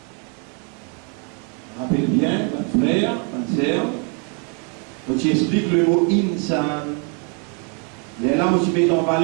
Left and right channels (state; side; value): quieter; left; 37.8 dB